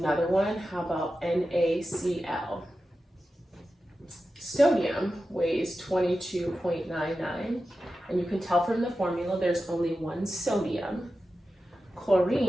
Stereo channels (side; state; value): both; normal; correlation 0.92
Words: one. How about NaCl? Sodium weighs 22.99, and you can tell from the formula there's only 1 sodium.